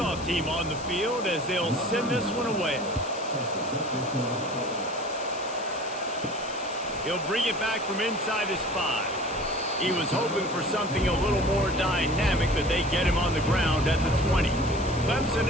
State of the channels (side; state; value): left; noise; hiss, 15 dB below the sound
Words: team on the field as they'll send this one away. He'll bring it back from inside his 5. He was hoping for something a little more dynamic, but they get him on the ground at the 20. Clemson